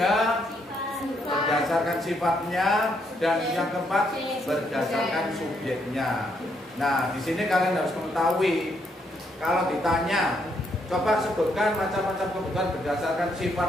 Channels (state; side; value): normal; both; correlation 0.74